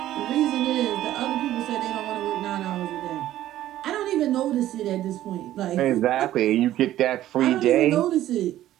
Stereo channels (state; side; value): quieter; left; 13.5 dB